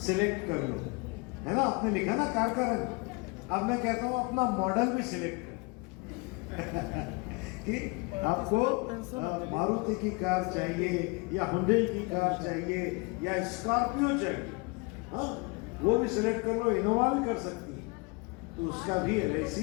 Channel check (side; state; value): right; quieter; 28.8 dB